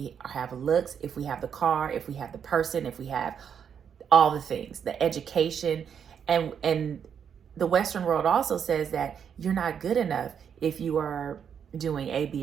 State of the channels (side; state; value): left; quieter; 7.7 dB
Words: have looks, if we have the car, if we have the person, if we have all the things, the education. And the Western world also says that you're not good enough if you are doing A,